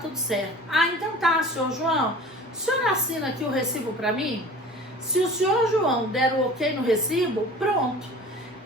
certo. Ah, então tá, senhor João. O senhor assina aqui o recibo para mim? Se o senhor João der o ok no recibo, pronto.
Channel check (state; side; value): normal; both; correlation 0.42